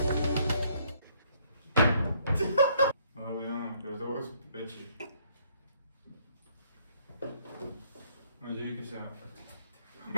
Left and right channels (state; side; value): inverted; both; correlation -0.67